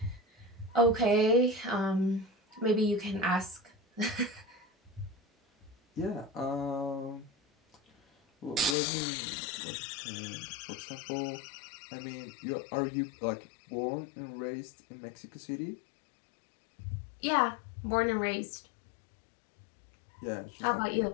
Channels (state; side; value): drops out; right; at 8.8 s